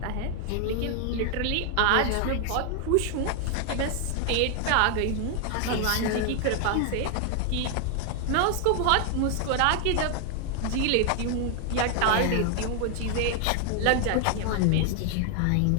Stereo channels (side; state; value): both; different; correlation 0.00